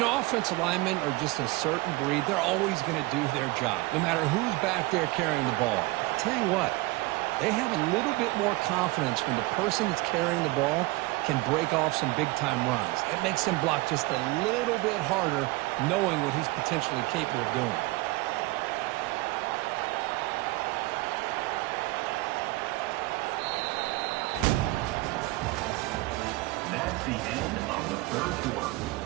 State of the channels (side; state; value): left; quieter; 21.5 dB